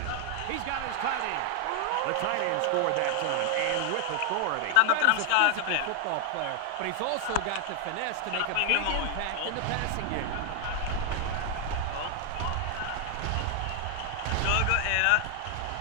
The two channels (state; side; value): different; both; correlation 0.00